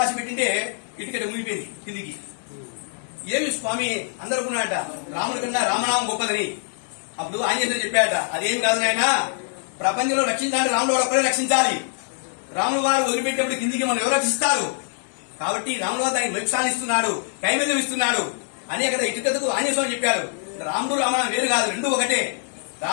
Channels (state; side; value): silent; right; digital silence